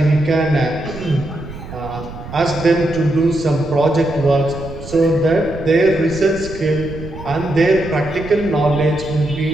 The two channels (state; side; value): noise; right; rumble, 13 dB below the sound